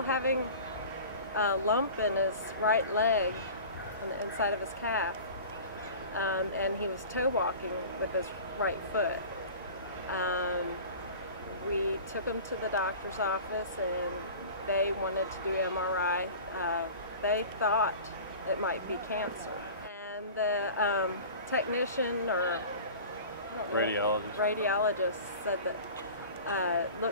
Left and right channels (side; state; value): both; inverted; correlation -0.39